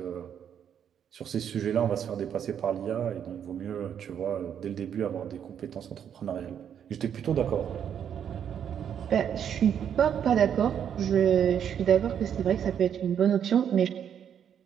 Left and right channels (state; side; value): quieter; left; 8.7 dB